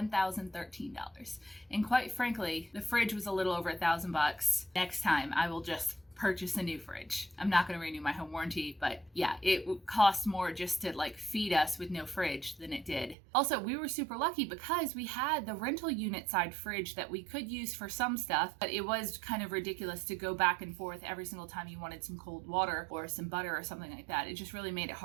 And quite frankly, the fridge was a little over $1,000. Next time I will just purchase a new fridge. I'm not going to renew my home warranty, but yeah, it would cost more just to like feed us with no fridge than it did. Also, we were super lucky because we had the rental unit side fridge that we could use for some stuff, but it was kind of ridiculous to go back and forth every single time you wanted some cold water or some butter or something like that. It just really made it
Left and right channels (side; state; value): left; drops out; at 13.2 s